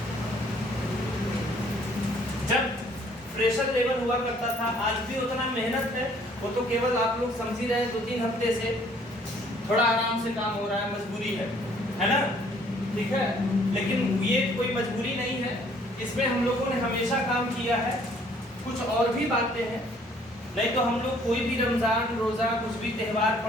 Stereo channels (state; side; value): normal; both; correlation 0.60